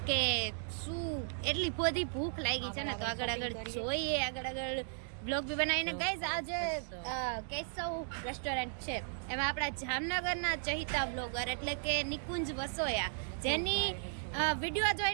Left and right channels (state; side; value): silent; left; digital silence